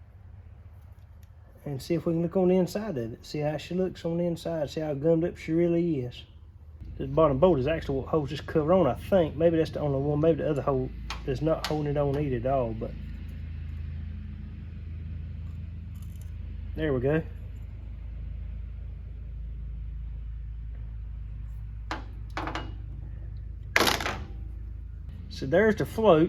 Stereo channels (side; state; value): both; identical; correlation 1.00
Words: And see if we can look on the inside of it. See how she looks on the inside. See how gummed up she really is. This bottom bolt is actually what holds this cover on, I think. Maybe that's the only one. Maybe the other hole is not holding it on either at all, but there we go. So there's the